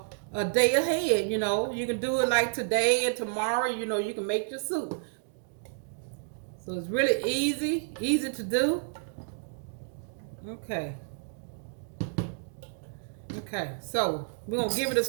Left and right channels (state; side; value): silent; left; digital silence